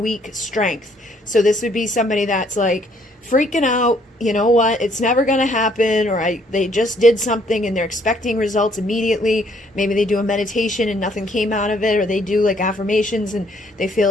strength. So this would be somebody that's like freaking out, you know what, it's never going to happen, or they just did something and they're expecting results immediately. Maybe they do a meditation and nothing came out of it, or they do like affirmations and they feel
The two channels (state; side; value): normal; both; correlation 0.65